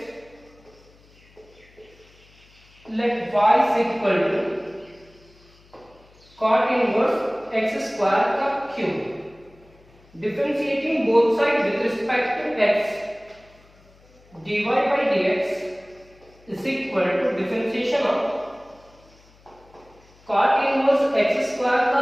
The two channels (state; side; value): noise; left; hum, 28 dB below the sound